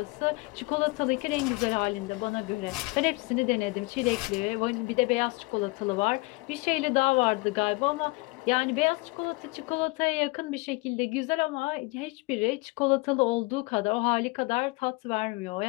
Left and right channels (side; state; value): right; quieter; 25.7 dB